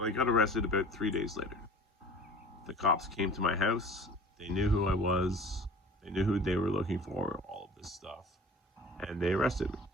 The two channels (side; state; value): both; normal; correlation 0.43